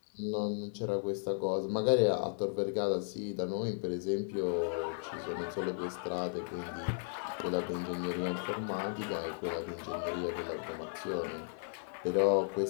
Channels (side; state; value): right; silent; digital silence